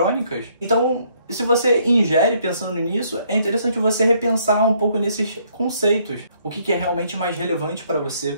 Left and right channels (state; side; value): inverted; both; correlation -0.67